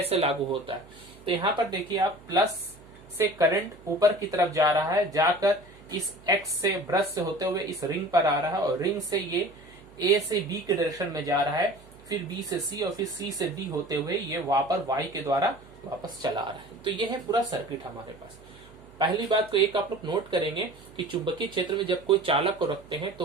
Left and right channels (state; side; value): noise; right; hum, 24 dB below the sound